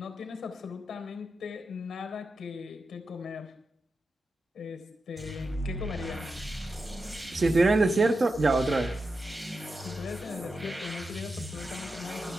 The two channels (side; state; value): both; normal; correlation 0.89